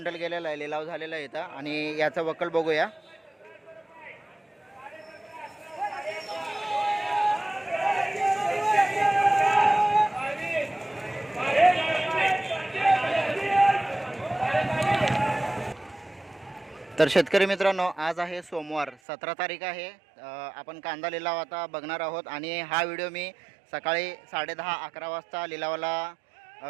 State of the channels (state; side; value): drops out; left; at 18.9 s